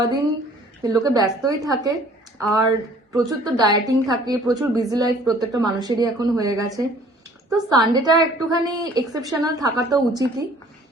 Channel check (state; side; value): normal; both; correlation 0.54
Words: দিন লোকে ব্যস্তই থাকে, আর প্রচুর তো ডায়েটিং থাকে, প্রচুর বিজি লাইফ প্রত্যেকটা মানুষেরই এখন হয়ে গেছে। তো সানডেটা একটুখানি এক্সেপশনাল থাকা তো উচিতই।